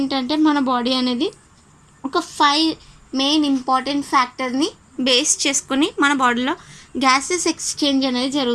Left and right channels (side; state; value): both; identical; correlation 1.00